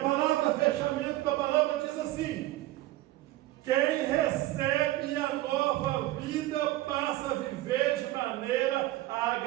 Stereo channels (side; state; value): left; quieter; 16.7 dB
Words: fechamento da palavra diz assim: quem recebe a nova vida passa a viver de maneira a